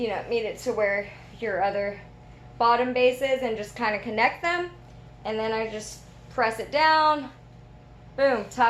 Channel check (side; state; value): both; identical; correlation 1.00